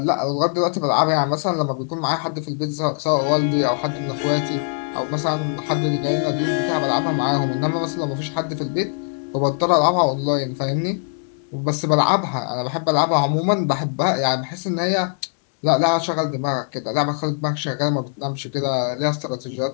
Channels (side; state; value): right; silent; 64 dB below the other